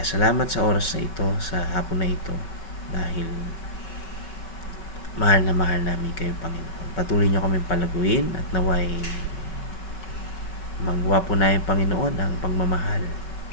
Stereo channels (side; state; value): right; late; 5.3 ms